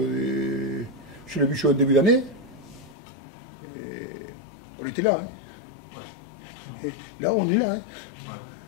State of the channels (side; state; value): right; drops out; at 3.0 s